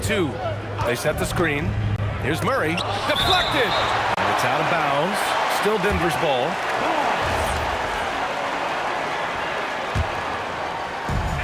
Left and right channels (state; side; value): identical; both; correlation 1.00